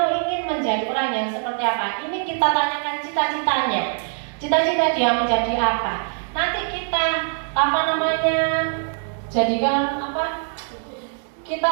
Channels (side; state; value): left; silent; 57 dB below the other